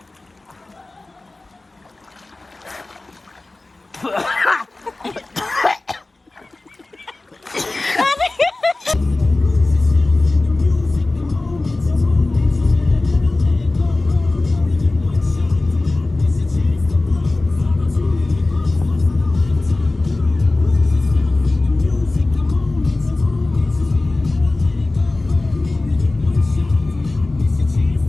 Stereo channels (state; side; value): quieter; right; 3.1 dB